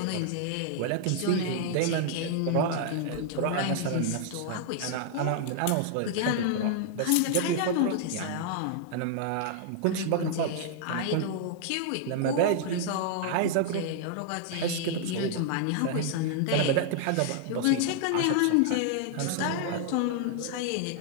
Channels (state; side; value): different; both; correlation -0.01